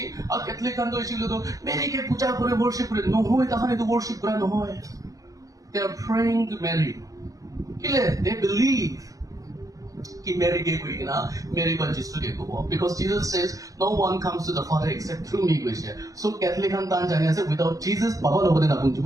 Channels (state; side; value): late; left; 0.17 ms